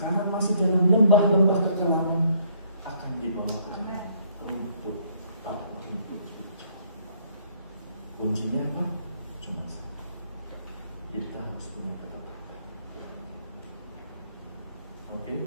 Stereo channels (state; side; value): inverted; both; correlation -0.65